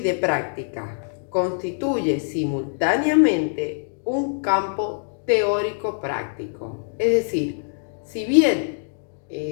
práctica. Constituye simultáneamente un campo teórico-práctico. Es decir, si bien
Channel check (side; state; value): right; silent; digital silence